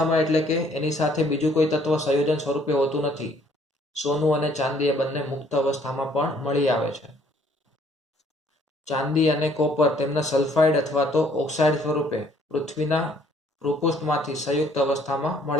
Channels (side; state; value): both; normal; correlation 0.62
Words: એટલે કે એની સાથે બીજું કોઈ તત્વ સંયોજન સ્વરૂપે હોતું નથી. સોનું અને ચાંદી એ બંને મુક્ત અવસ્થામાં પણ મળી આવે છે. ચાંદી અને કોપર તેમના સલ્ફાઇડ અથવા તો ઓક્સાઇડ સ્વરૂપે પૃથ્વીના ભૂપૃષ્ઠમાંથી સંયુક્ત અવસ્થામાં